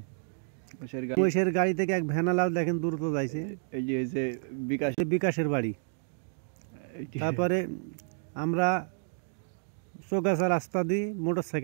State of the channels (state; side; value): silent; left; digital silence